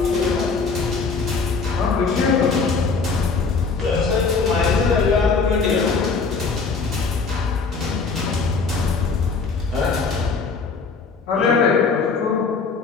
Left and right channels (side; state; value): right; quieter; 4.7 dB